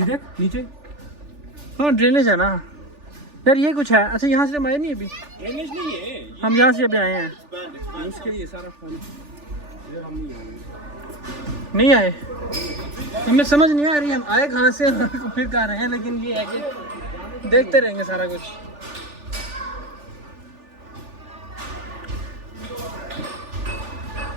देख नीचे हाँ ड्रेनेज है ना यार, ये कुछ है। अच्छा यहाँ से हम आए नहीं अभी, ड्रेनेज नहीं है, हम यहाँ से अभी आए हैं। ये उसके लिए सारा पानी। यार हम नहीं आएंगे। नहीं आए, हमें समझ नहीं आ रही हम आए कहाँ से फिर कहाँ रहे हैं, लेकिन ये है कि देखते रहेंगे सारा कुछ।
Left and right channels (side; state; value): left; late; 3.4 ms